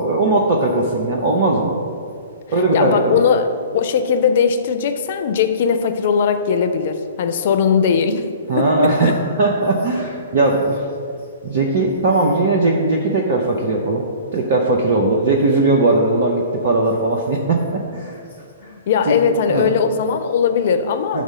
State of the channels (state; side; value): inverted; both; correlation -0.43